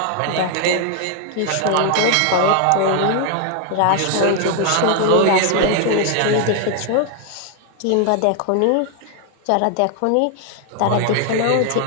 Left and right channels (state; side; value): different; both; correlation 0.01